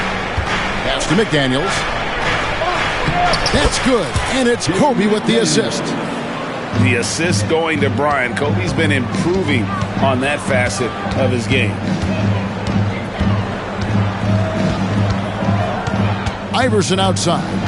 Pass to McDaniels. That's good, and it's Kobe with the assist. The assist going to Bryant. Kobe's been improving on that facet of his game. Iverson outside.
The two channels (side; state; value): both; identical; correlation 1.00